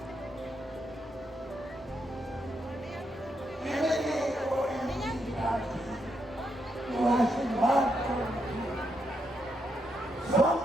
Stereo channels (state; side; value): normal; both; correlation 0.80